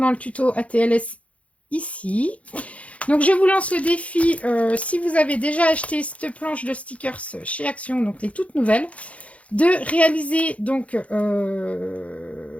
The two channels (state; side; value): late; right; 0.064 ms